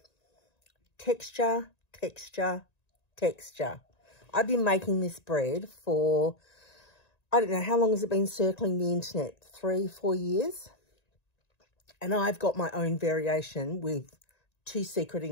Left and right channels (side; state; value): right; late; 1.9 ms